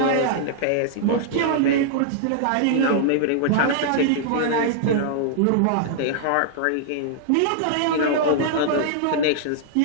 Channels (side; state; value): both; different; correlation -0.01